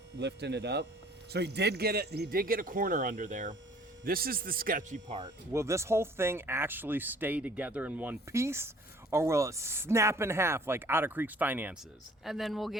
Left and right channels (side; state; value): both; normal; correlation 0.54